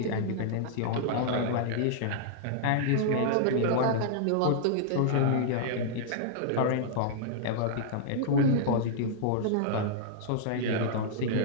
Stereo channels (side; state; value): both; different; correlation -0.02